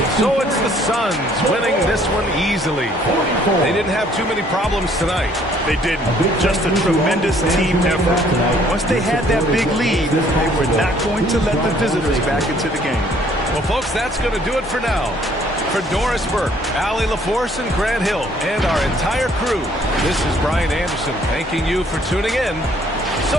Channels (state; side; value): normal; both; correlation 0.61